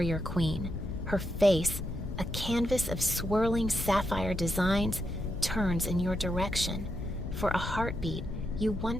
queen. Her face, a canvas of swirling sapphire designs, turns in your direction. For a heartbeat, you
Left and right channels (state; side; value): noise; left; rumble, 8 dB below the sound